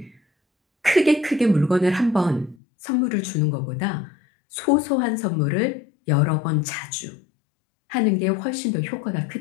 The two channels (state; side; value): drops out; right; at 2.6 s